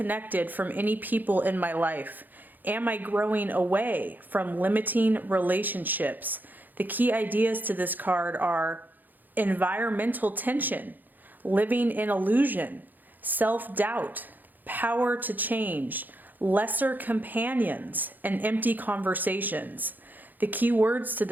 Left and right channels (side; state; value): left; late; 0.086 ms